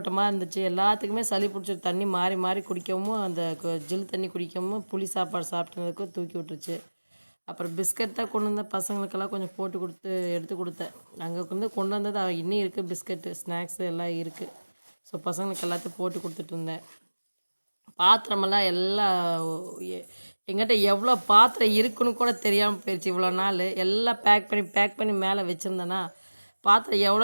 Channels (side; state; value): both; inverted; correlation -1.00